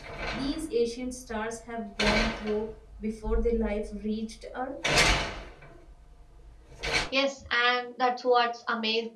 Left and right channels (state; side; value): identical; both; correlation 1.00